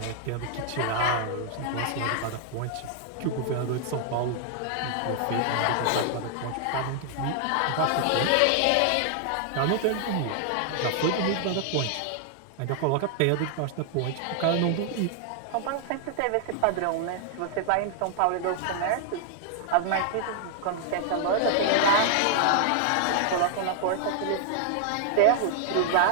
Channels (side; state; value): both; different; correlation 0.00